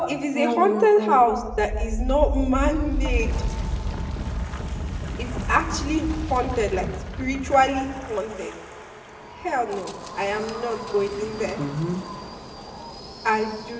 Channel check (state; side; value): identical; both; correlation 1.00